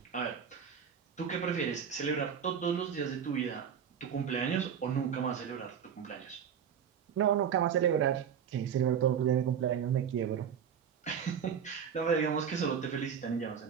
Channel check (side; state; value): left; quieter; 7.9 dB